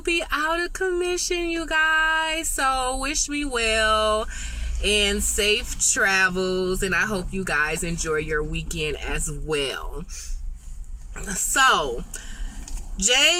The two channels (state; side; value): identical; both; correlation 1.00